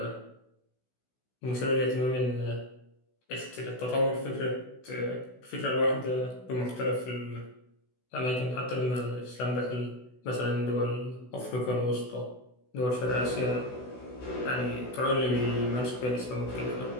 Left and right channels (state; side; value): late; right; 16 ms